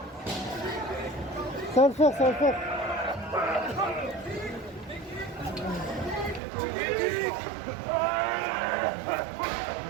Ça va le faire, ça va le faire.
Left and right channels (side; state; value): left; drops out; at 6.4 s